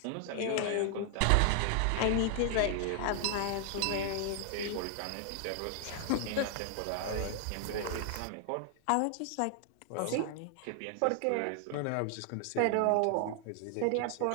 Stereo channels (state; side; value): different; both; correlation 0.00